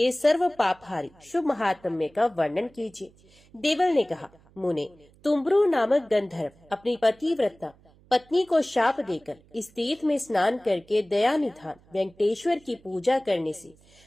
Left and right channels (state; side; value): noise; right; hum, 29 dB below the sound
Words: सर्व पापहारी शुभ महात्म्य का वर्णन कीजिए। देवल ने कहा, मुने, तुम्ब्रु नामक गंधर्व अपनी पतिव्रता पत्नी को शाप देकर इस तीर्थ में स्नान करके दया निधान वेंकटेश्वर की पूजा करने से